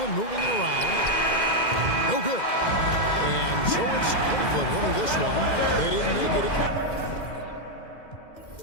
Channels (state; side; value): late; right; 2.1 ms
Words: moving it around. No good. And so it's Cleveland winning this one. They didn't make it.